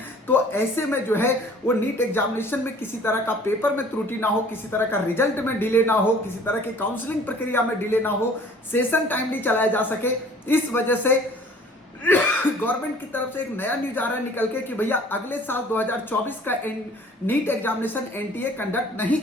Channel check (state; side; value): normal; both; correlation 0.51